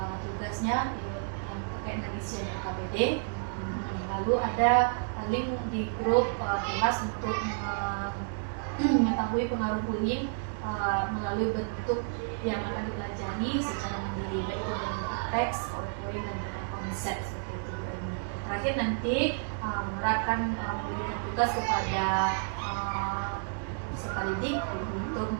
tugasnya yang terkait dengan isian KBD. Lalu ada link di grup kelas untuk mengetahui pengaruh bullying melalui bentuk yang akan dipelajari secara mandiri, baik itu dalam bentuk teks, PowerPoint, dan konsep seperti itu. Dan terakhir nanti Nora akan memberikan tugas kepada peserta didik untuk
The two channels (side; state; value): left; silent; digital silence